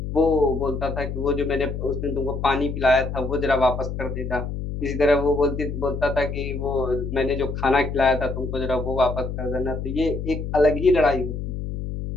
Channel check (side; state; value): left; noise; hum, 5 dB below the sound